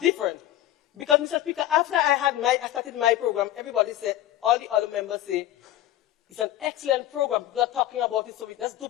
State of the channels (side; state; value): right; quieter; 13.2 dB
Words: Because, Mr. Speaker, after I started my program, everybody said, all the other members say, it's an excellent program. People are talking about it, so let's